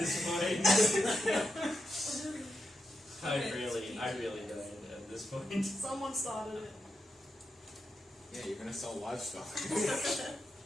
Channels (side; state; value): both; normal; correlation 0.86